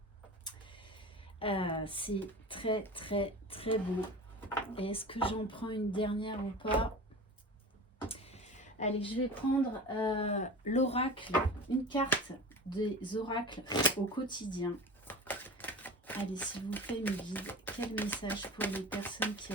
C'est très, très, très beau. Et est-ce que j'en prends une dernière ou pas? Allez, je vais prendre l'oracle, une carte des oracles au quotidien. Allez, s'il vous plaît, mes guides, quel message pour les personnes qui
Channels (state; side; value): normal; both; correlation 0.33